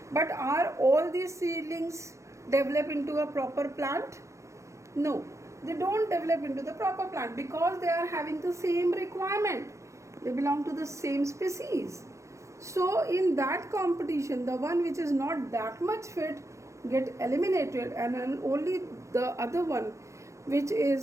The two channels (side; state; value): left; late; 0.15 ms